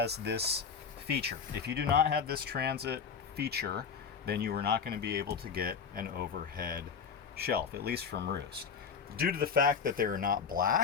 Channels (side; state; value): right; quieter; 6.3 dB